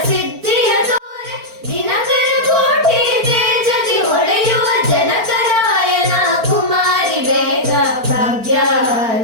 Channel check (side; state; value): left; late; 4.4 ms